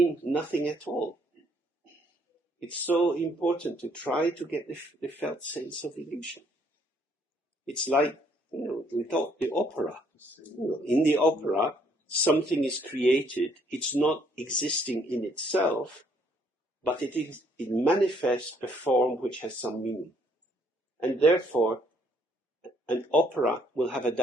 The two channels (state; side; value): normal; both; correlation 0.66